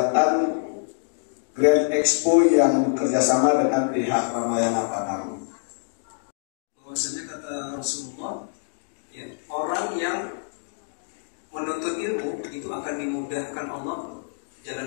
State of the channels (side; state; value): right; silent; digital silence